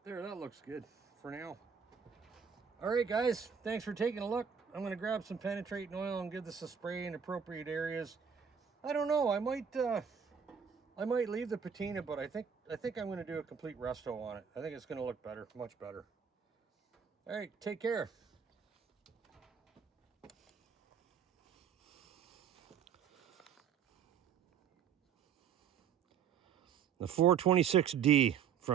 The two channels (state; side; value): quieter; left; 7.3 dB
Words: There, that looks good for now. All right, guys, thanks for taking a look. I'm going to grab some penetrating oil and give this a spray in appropriate areas. I don't know, I might leave the patina, but I think I'm going to do a complete resto on it. I think it's going to look better, much better. All right, take care. The 426D